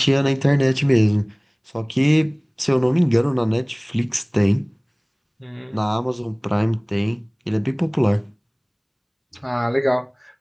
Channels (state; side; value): identical; both; correlation 1.00